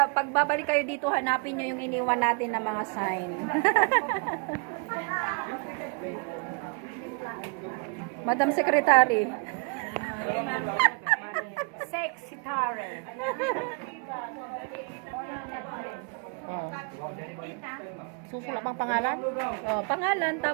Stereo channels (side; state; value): left; quieter; 33.2 dB